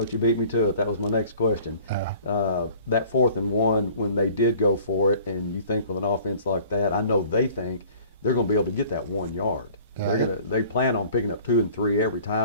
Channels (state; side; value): inverted; both; correlation -0.50